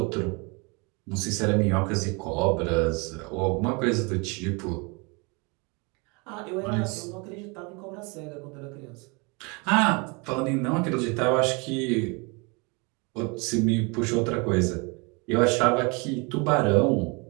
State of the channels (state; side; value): quieter; left; 29.9 dB